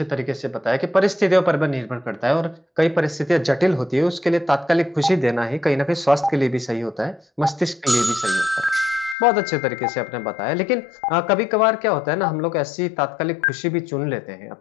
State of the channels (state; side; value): drops out; right; at 9.2 s